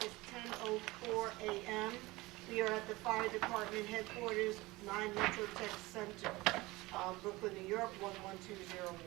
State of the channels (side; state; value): left; quieter; 21.1 dB